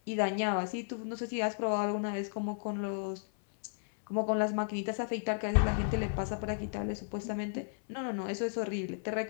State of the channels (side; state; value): right; silent; 55 dB below the other